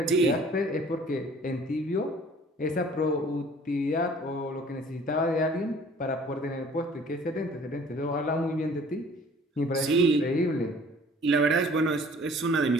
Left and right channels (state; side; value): normal; both; correlation 0.52